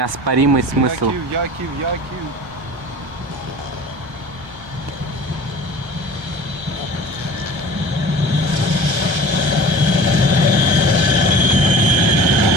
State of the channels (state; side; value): late; left; 1.3 ms